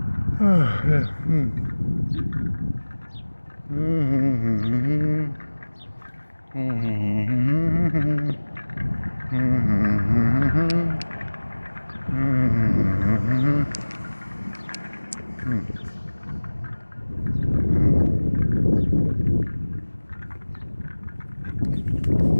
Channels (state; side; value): inverted; both; correlation -1.00